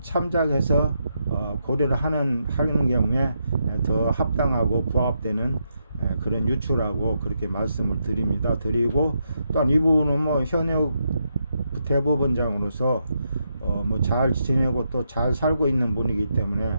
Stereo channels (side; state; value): both; inverted; correlation -0.81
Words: 참작해서 고려를 하는 경우에 더 합당하고 부합되는 그런 유추라고 그렇게 말씀을 드리고, 또한 이분은 뭐 현역 대법원장으로서 뭐 잘 지내고 또 잘 살고 있는 분이기 때문에